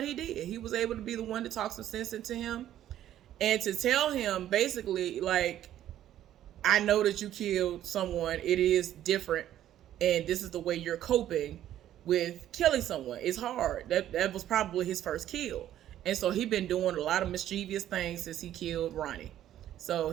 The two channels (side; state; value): left; quieter; 12.0 dB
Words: he did. He was able to be the one to talk some sense into him. And to tell him basically like, I know that you killed someone. It is different. And this is the way you're coping with killing someone. It's hard. That was probably his first kill. And so he been doing a lot of mischievous things since he killed Ronnie. So